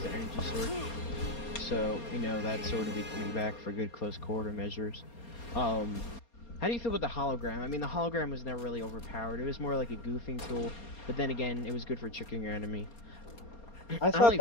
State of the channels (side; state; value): right; late; 4.3 ms